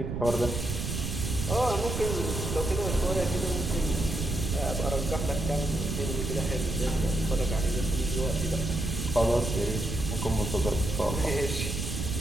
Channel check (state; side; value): noise; right; rumble, 3 dB below the sound